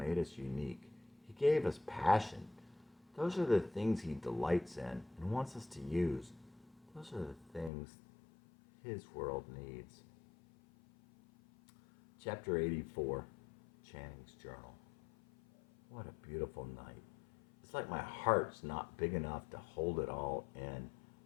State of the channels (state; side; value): drops out; right; at 7.7 s